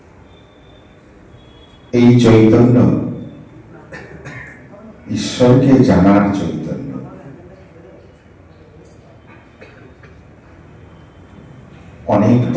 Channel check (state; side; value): identical; both; correlation 1.00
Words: এই চৈতন্য ঈশ্বরকে জানার চৈতন্য। অনেক